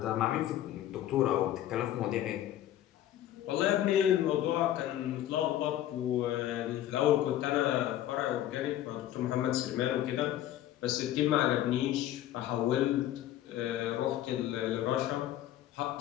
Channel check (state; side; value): quieter; right; 12.5 dB